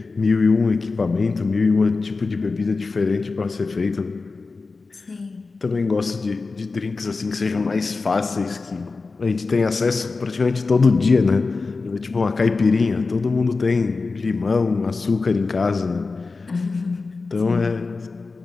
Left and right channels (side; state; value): right; quieter; 4.0 dB